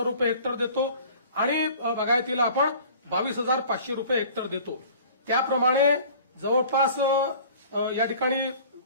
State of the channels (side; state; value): both; inverted; correlation -0.46